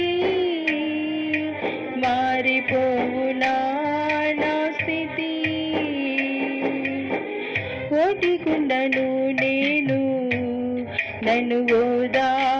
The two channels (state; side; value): identical; both; correlation 1.00